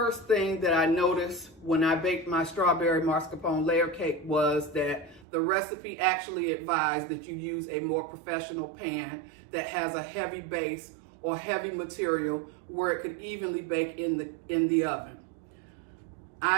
thing that I noticed when I baked my strawberry mascarpone layer cake was that the recipe actually advised that you use a more professional pan that has a heavy base or heavy material where it could evenly bake in the oven.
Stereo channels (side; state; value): left; drops out; at 5.2 s